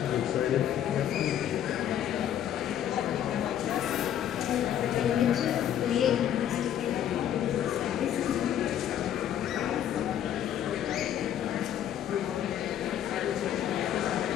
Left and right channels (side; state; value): right; quieter; 10.4 dB